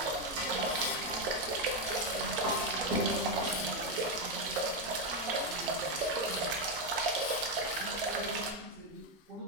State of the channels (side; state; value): both; normal; correlation 0.05